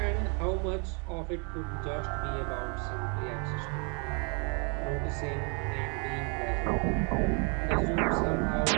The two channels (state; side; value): quieter; left; 35.6 dB